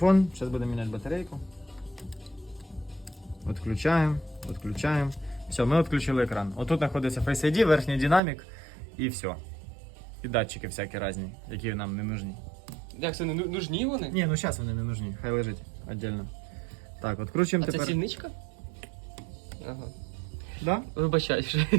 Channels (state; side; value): drops out; left; at 8.2 s